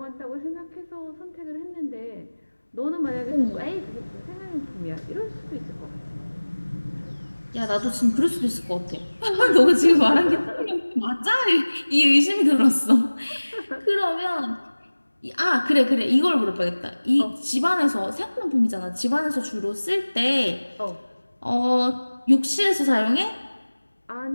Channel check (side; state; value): both; inverted; correlation -1.00